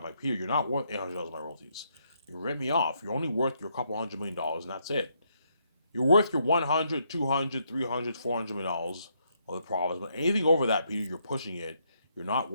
like, Peter, you're not worth $800 of my royalties. You rip me off. You're only worth your couple $100 million, and that's it. You're worth your 100, 200, 300, $400 million of the profits. But anything over that, Peter, you're pushing it. You're not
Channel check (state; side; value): inverted; both; correlation -0.75